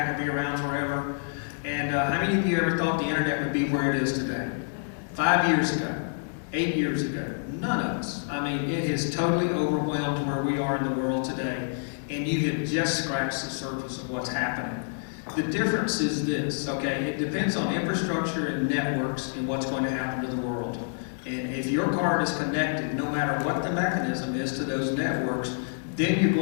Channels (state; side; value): silent; right; digital silence